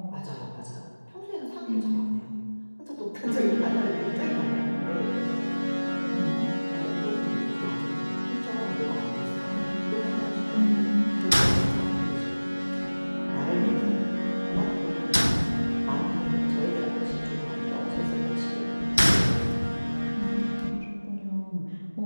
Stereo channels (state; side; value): inverted; both; correlation -1.00